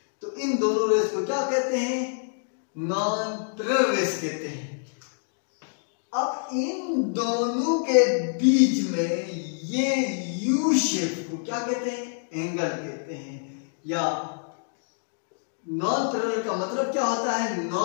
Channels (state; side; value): silent; right; digital silence